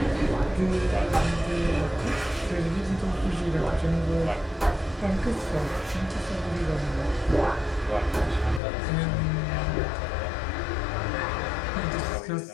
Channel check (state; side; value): drops out; right; at 8.6 s